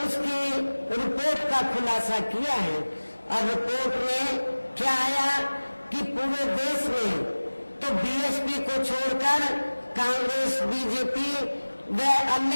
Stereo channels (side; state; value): both; inverted; correlation -1.00